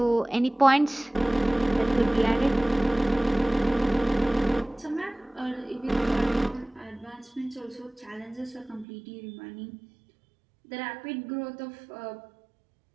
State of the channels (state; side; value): drops out; left; at 8.8 s